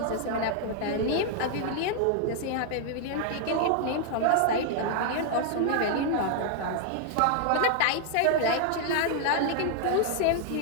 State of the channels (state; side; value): different; both; correlation 0.00